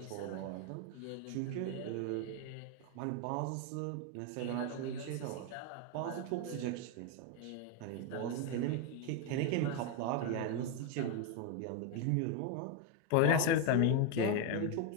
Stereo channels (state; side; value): different; both; correlation 0.01